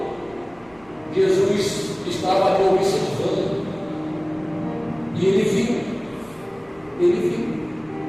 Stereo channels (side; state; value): right; noise; rumble, 29 dB below the sound